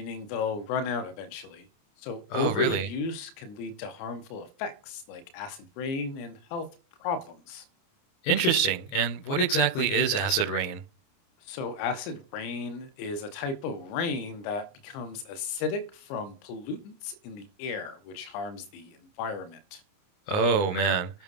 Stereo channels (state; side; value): late; right; 29 ms